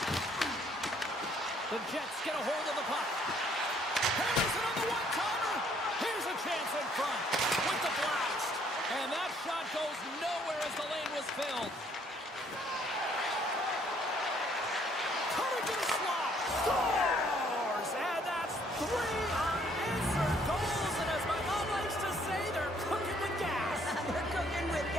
The Jets get a hold of the puck. Hammers it on the one-timer. Here's a chance in front with the blast. And that shot goes nowhere as the lane was filled. Coming to the slot. Scores! And that's 3 unanswered goals. And as my mom likes to say, they're cooking with gas. They're cooking with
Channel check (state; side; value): normal; both; correlation 0.64